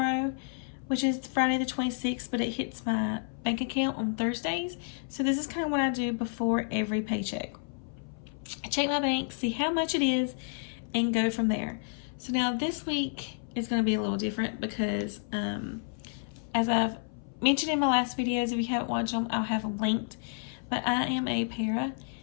which is Friday the 26th, but it hits my bank account on Thursdays. So this is kind of what I do before every paycheck. I check my bank, see how much it is, and go from there. So now this week is going to be a little different because as I've mentioned in my last videos, if you haven't watched them, I'll have them linked. But I am a para,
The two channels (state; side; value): silent; right; 57 dB below the other